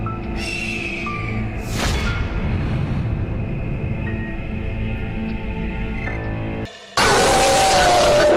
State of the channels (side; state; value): both; identical; correlation 1.00